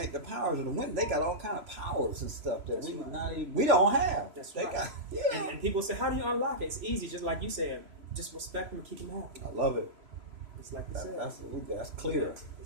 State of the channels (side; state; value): left; late; 3.0 ms